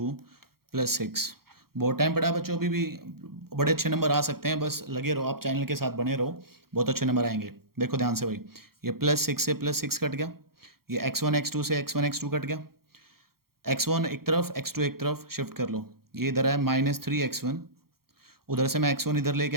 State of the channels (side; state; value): left; late; 0.94 ms